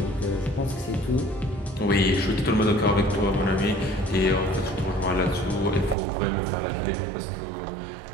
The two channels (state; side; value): drops out; left; at 6.0 s